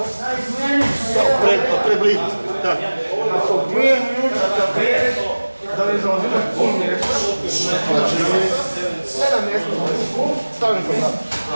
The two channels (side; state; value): both; inverted; correlation -1.00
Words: Preblizu. Tak. Ako 2 minuta prije, Da li zaozimaš pol mjesta? Znači, 7 mjesta. Stavim koji da.